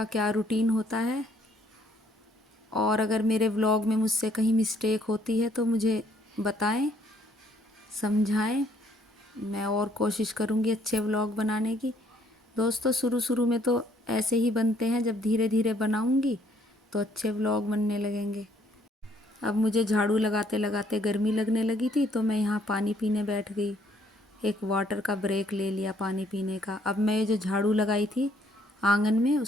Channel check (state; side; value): normal; both; correlation 0.65